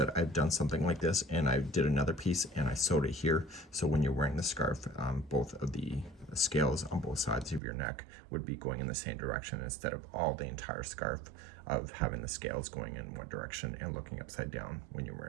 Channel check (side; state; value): left; drops out; at 7.6 s